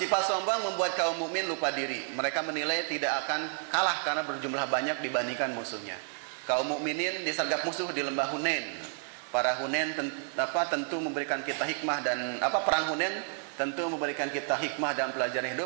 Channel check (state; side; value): silent; left; 57 dB below the other